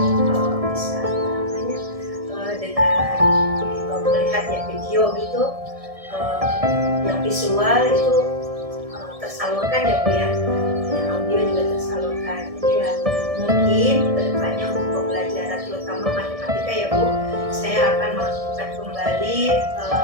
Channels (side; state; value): left; late; 1.7 ms